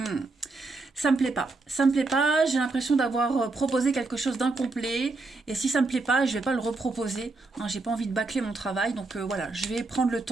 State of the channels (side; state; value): left; quieter; 3.5 dB